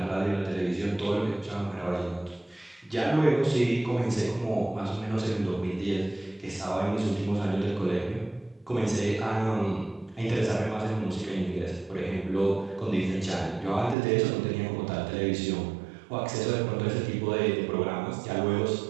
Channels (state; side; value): drops out; left; at 14.0 s